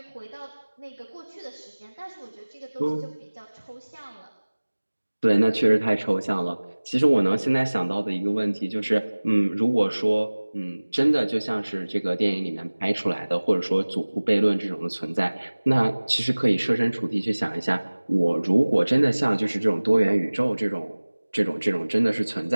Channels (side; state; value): both; inverted; correlation -1.00